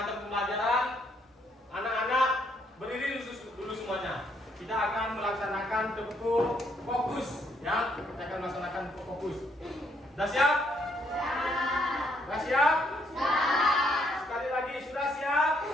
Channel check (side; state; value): both; normal; correlation 0.71